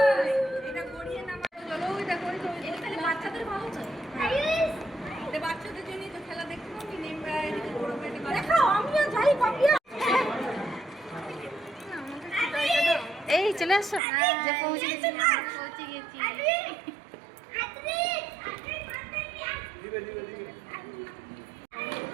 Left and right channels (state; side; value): drops out; left; at 14.0 s